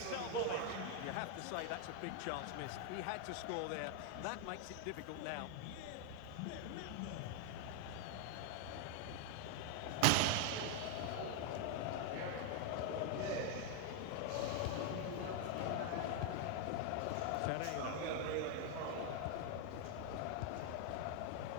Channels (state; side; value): different; both; correlation 0.01